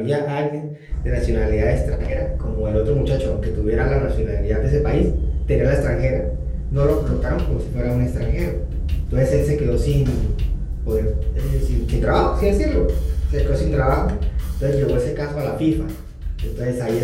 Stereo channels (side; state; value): both; identical; correlation 1.00